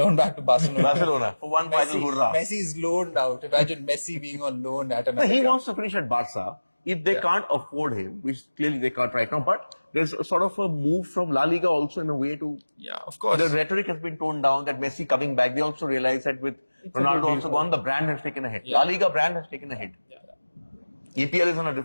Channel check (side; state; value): both; inverted; correlation -1.00